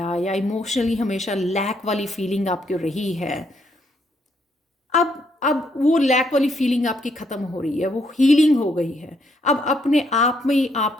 या इमोशनली हमेशा लैक वाली फीलिंग आपकी रही है, अब वो लैक वाली फीलिंग आपकी ख़त्म हो रही है, वो हीलिंग हो गई है। अब अपने आप में ही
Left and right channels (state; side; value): normal; both; correlation 0.73